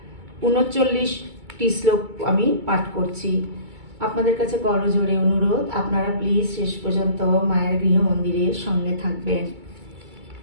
39টি শ্লোক আমি পাঠ করছি। আপনাদের কাছে করজোড়ে অনুরোধ, আপনারা প্লিজ শেষ পর্যন্ত মায়ের গৃহ মন্দিরের সঙ্গে থাকবেন।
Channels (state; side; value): late; left; 2.3 ms